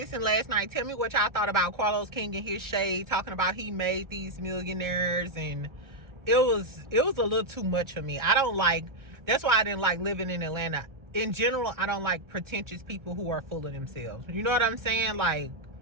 last night, tell me what y'all thought about Carlos King and his shade, talking about he made these millionaires, and it was a little too much for me. That's why I didn't like living in Atlanta. In general, I don't like pretentious people who are full of themselves. You know what I'm saying? Like,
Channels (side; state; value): left; late; 1.3 ms